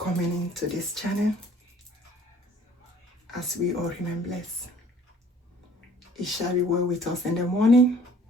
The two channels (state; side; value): normal; both; correlation 0.54